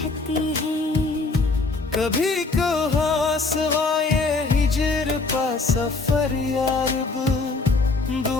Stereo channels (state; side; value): quieter; right; 3.7 dB